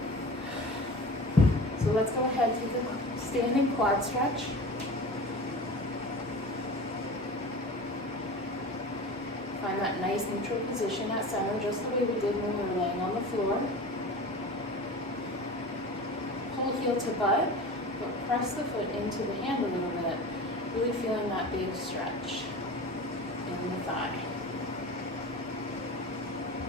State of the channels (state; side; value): normal; both; correlation 0.34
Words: So let's go ahead, take a standing quad stretch. Find that nice neutral position at center, just the way we did when we were laying on the floor. Pull heel to butt, but press the foot into the hand a little bit, really feeling that big stretch in the thigh.